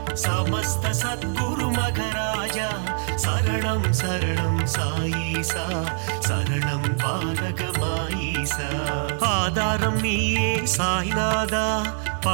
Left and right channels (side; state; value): left; silent; digital silence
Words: समस्त सद्गुरु मघराजा शरणं शरणं साईसा शरणं पालक माईसा ஆதாரம் நீயே சாய்நாதா